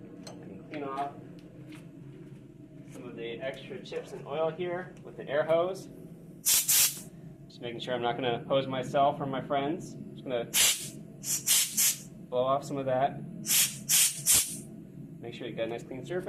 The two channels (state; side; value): identical; both; correlation 1.00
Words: clean off some of the extra chips and oil here with the air hose. Just making sure I'm not going to hose myself or my friends. Just going to blow off some of that. Make sure you got a nice clean